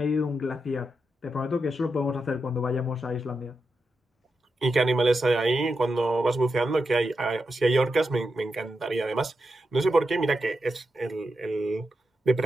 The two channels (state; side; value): normal; both; correlation 0.87